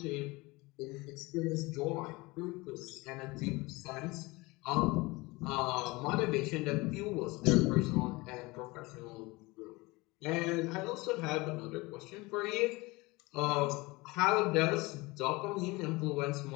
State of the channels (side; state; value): right; quieter; 23.2 dB